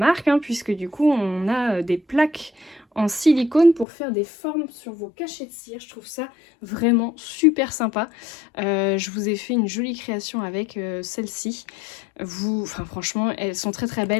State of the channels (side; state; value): right; drops out; at 3.9 s